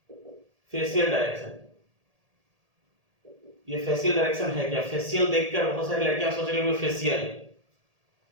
फेशियल डायरेक्शन, ये फेशियल डायरेक्शन है क्या? फेशियल देखकर बहुत सारी लड़कियां सोच रही होंगी फेशियल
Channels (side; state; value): left; late; 1.8 ms